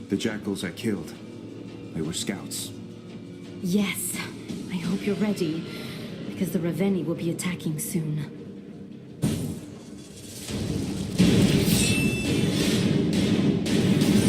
The jackals I killed, they were scouts. Yes, I hope you're ready, because the Raveni will be attacking soon.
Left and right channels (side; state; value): both; identical; correlation 1.00